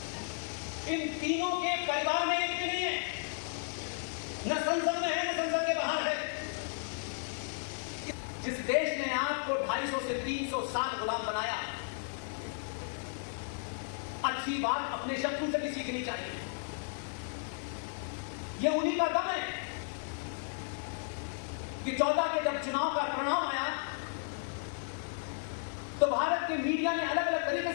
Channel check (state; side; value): silent; right; digital silence